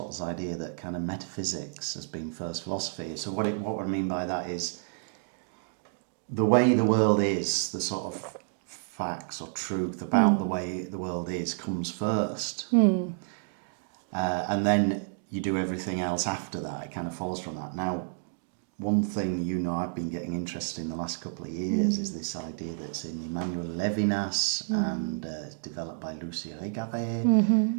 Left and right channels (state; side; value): silent; left; digital silence